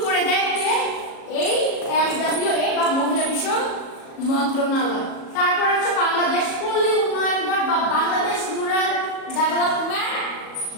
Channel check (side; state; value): right; late; 37 ms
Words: করে দেয় এই MWA বা মহিলা বিষয়ক মন্ত্রণালয়। তারপর আছে বাংলাদেশ পল্লী উন্নয়ন বোর্ড বা বাংলাদেশ রুরাল ডেভেলপমেন্ট